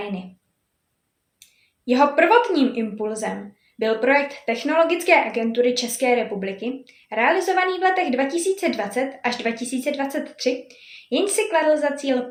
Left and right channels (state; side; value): identical; both; correlation 1.00